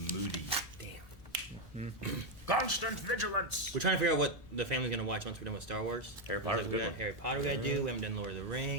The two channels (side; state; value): both; normal; correlation 0.04